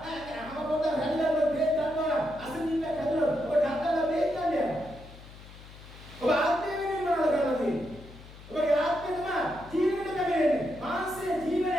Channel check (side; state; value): left; noise; hum, 18 dB below the sound